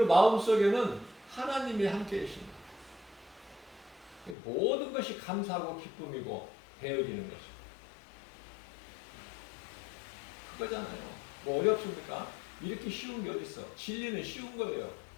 마음속에는 하나님이 함께 계십니다. 모든 것이 감사하고 기쁨이고 되어지는 것이고 그거잖아요. 뭐 어렵습니까? 이렇게 쉬운 게 어디 있어? 진리는 쉬운 거예요.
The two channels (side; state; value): right; drops out; at 4.4 s